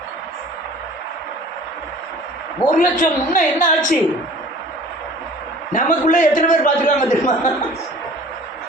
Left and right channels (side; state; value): both; normal; correlation 0.46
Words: 1,00,000 முன்ன என்ன ஆச்சு? நமக்குள்ள எத்தனை பேர் பார்த்துருக்காங்க தெரியுமா?